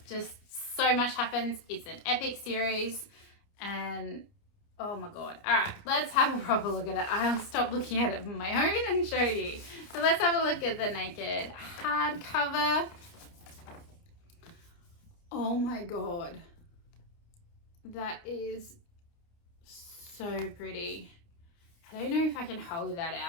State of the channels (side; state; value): right; late; 29 ms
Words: just so much happens. It's an epic series and oh my god. All right, let's have a proper look at it. I'll stop looking at it on my own and show you. So let's have a look at the naked hardcover. Oh my god. That is so pretty. I don't know if I can hold that